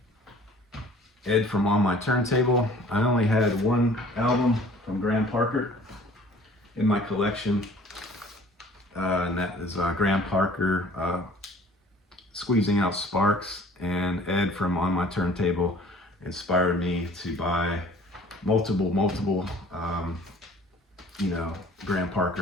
Ed from On My Turntable. I only had one album from Graham Parker in my collection, and that is Graham Parker, Squeezing Out Sparks. And Ed from On My Turntable inspired me to buy multiple Graham Parker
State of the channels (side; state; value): both; normal; correlation 0.51